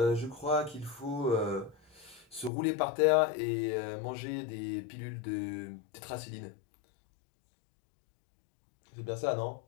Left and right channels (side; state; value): right; drops out; at 2.5 s